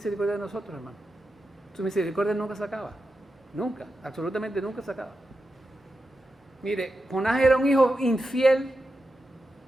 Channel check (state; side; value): normal; both; correlation 0.89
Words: de nosotros, hermano. Su misericordia nunca se acaba. Nunca, absolutamente nunca se acaba. Mire, Jonás era un hijo infiel